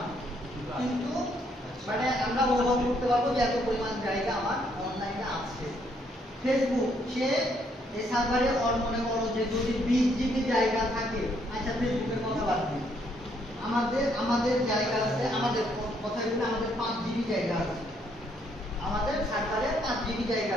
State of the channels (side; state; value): both; normal; correlation 0.71